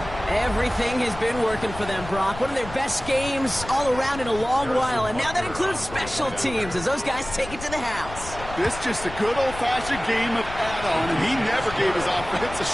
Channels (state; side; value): noise; left; rumble, 12 dB below the sound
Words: Everything has been working for them, Brock. One of their best games all around in a long while, and now that includes special teams as those guys take it to the house. This just a good old-fashioned game of add-on, and he never gave his offense a